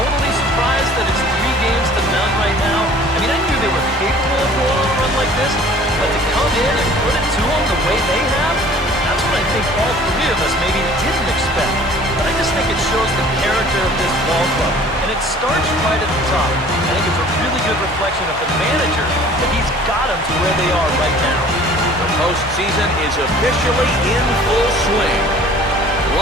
surprised that it's 3 games to none right now. I mean, I knew they were capable of going on a run like this, but to come in and put it to them the way they have, that's what I think all 3 of us maybe didn't expect. But I just think it shows the character of this ball club. And it starts right at the top. I think it's a really good reflection of the manager that he's got them to where they are right now. The postseason is officially in full swing.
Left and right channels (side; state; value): both; normal; correlation 0.50